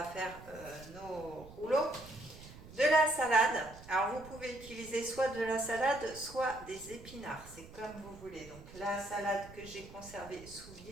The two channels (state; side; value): noise; right; rumble, 17 dB below the sound